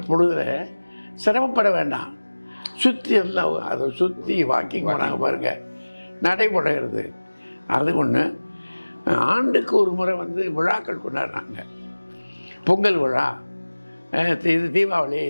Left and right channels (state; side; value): inverted; both; correlation -1.00